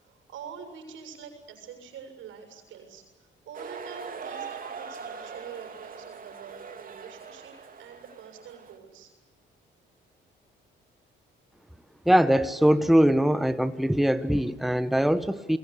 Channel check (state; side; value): normal; both; correlation 0.95